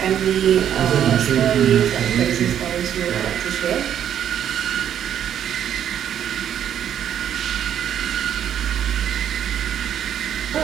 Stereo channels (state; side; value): quieter; left; 9.7 dB